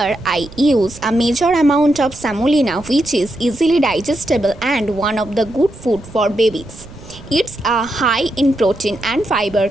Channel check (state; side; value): noise; right; rumble, 18 dB below the sound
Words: I use a major amount of semolina, which is easily digestible and one of the good food for babies. It's a high in protein and fiber,